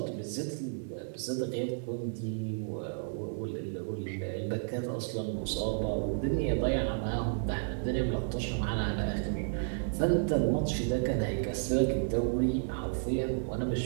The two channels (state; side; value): silent; left; digital silence